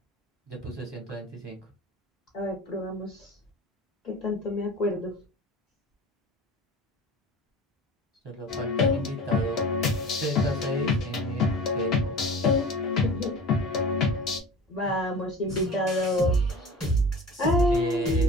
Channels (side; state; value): both; normal; correlation 0.38